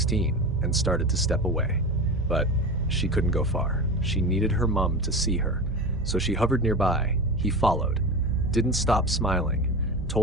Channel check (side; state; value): both; normal; correlation 0.26